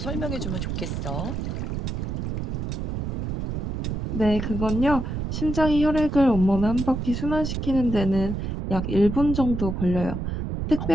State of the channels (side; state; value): right; noise; rumble, 3 dB below the sound